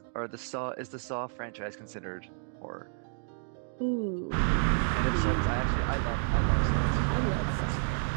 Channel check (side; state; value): left; silent; 57 dB below the other